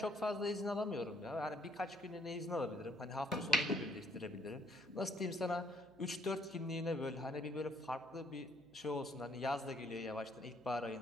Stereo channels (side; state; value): right; noise; hum, 26 dB below the sound